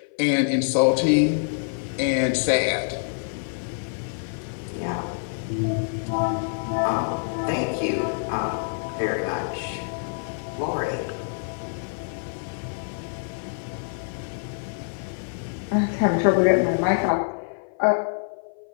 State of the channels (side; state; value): right; silent; 55 dB below the other